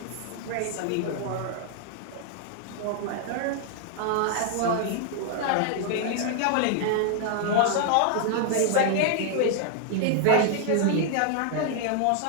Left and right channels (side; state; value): both; different; correlation 0.00